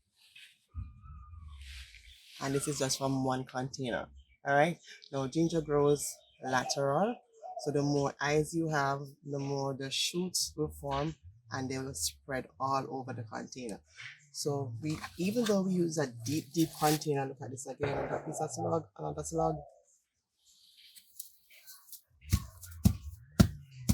And this is just from one container. All right. Now ginger grows lateral. So the more eyes you have, the more the shoots will form and they will spread all over the container. So we, even though we use a deep container, look at this again, another piece of slug, another slug.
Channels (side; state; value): both; identical; correlation 1.00